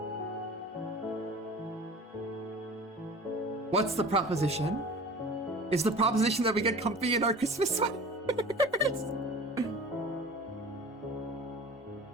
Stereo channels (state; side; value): normal; both; correlation 0.40